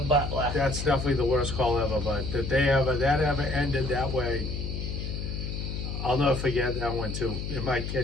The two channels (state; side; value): noise; left; hum, 5 dB below the sound